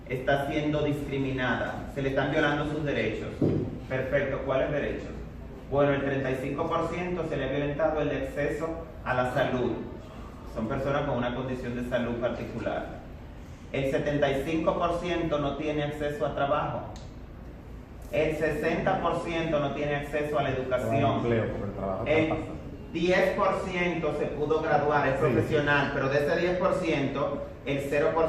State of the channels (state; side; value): identical; both; correlation 1.00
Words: está siendo discriminada, se le están violando sus derechos. Perfecto, ¿cuáles derechos? Bueno, el 35% se le ha violentado el acceso a la salud. Son personas con una condición de salud particular. el 75% no tiene acceso a trabajo, el 60% no tiene acceso a la educación, el 10% se pudo graduar, es profesional, pero de ese 10%, el